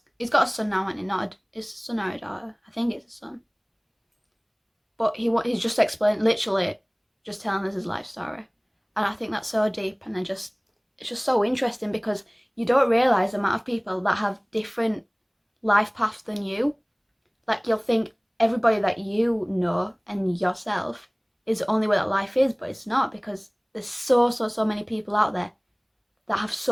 he's got a son now, and it's a son or a daughter. I think it's a son. But he's just literally just telling us his life story, and I think that's so deep, and it's just so interesting, because you don't realise the amount of people that have different life paths than you. Like, you'll think everybody that you know and yourself is the only way that life is, but it's not, because there's so many people out there that have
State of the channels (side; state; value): both; identical; correlation 1.00